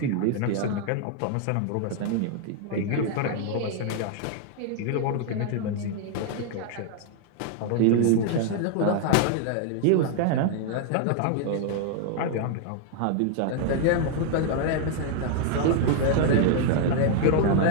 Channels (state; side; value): different; both; correlation 0.00